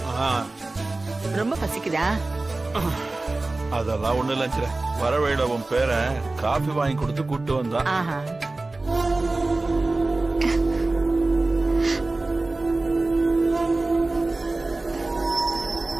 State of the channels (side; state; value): left; quieter; 3.1 dB